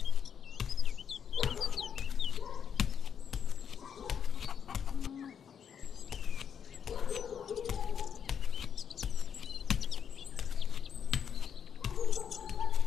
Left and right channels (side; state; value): right; quieter; 7.8 dB